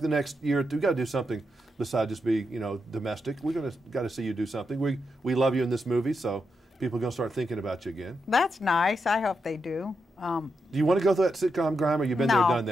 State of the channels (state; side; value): normal; both; correlation 0.84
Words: the next year or two? We've got to do something besides just be, you know, domestic. We're got to see you do something. We love you in this movie, so people are going to start thinking about you again. That's nice. I hope they do. Do you want to go through that sitcom grind, or you've been there, done